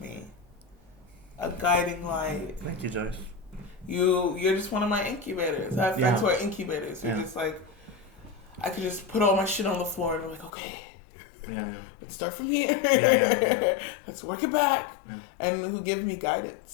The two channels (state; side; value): drops out; right; at 10.5 s